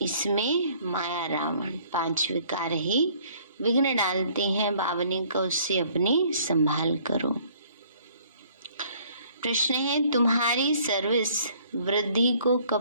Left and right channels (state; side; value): inverted; both; correlation -0.59